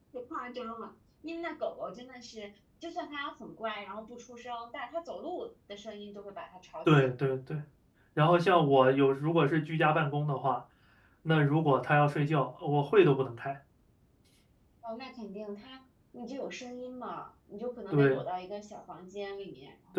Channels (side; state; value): both; identical; correlation 1.00